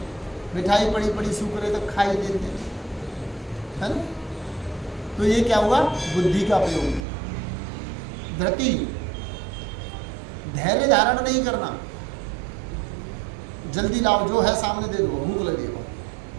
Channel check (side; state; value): left; drops out; at 7.0 s